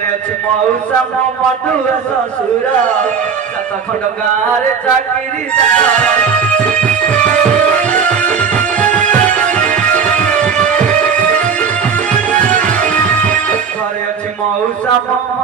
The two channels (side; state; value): left; quieter; 6.2 dB